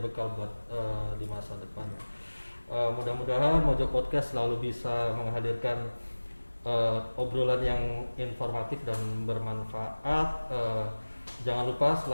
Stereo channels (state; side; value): inverted; both; correlation -1.00